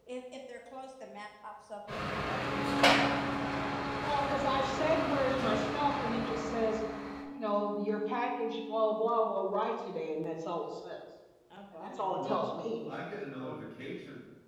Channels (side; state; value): both; identical; correlation 1.00